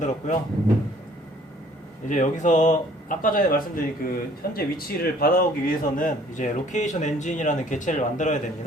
이제 여기서 아까 전에 말씀드린 그 현재 위치를 받아오기 위해서는 이제 로케이션 엔진이라는 객체를 만들어야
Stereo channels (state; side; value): normal; both; correlation 0.56